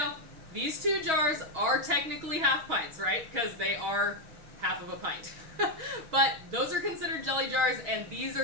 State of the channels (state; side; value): late; left; 6.3 ms